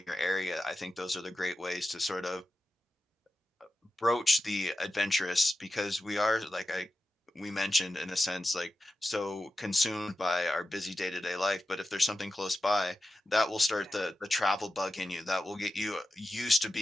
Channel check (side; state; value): both; normal; correlation 0.92